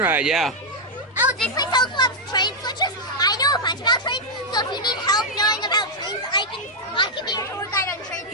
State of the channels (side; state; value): both; normal; correlation -0.02